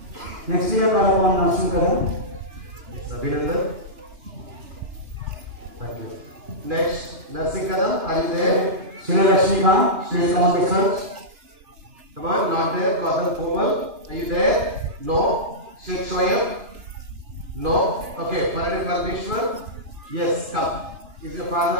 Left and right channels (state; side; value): late; left; 2.9 ms